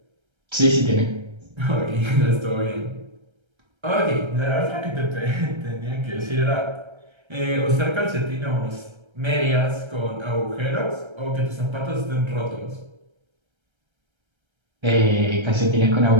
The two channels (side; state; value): left; late; 1.3 ms